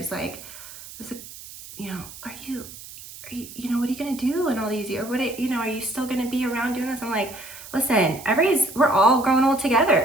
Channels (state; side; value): noise; right; hiss, 15 dB below the sound